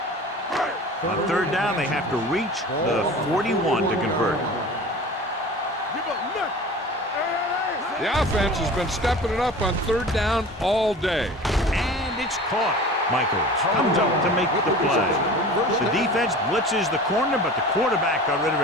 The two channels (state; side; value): normal; both; correlation 0.38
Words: On 3rd down, they have to reach the 41 to convert. The offense has been stepping it up on 3rd down all day. And it's caught. Michaels comes up to make the play. The defense blitzes the corner, but the quarterback got rid of